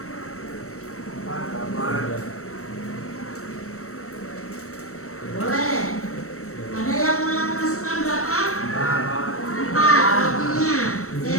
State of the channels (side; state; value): right; late; 0.64 ms